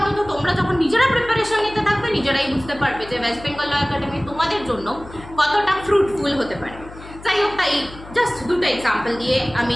তোমরা যখন নিজেরা প্রিপারেশন নিতে থাকবে নিজেরাই বুঝতে পারবে যে ওয়েস্ট বেঙ্গল ল একাডেমি তোমাদের জন্য কতটা ফ্রুটফুল হতে পারে। যাই হোক, তাই জাস্ট দুটো এক্সাম্পল দিয়ে আমি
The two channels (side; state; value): left; noise; hum, 17 dB below the sound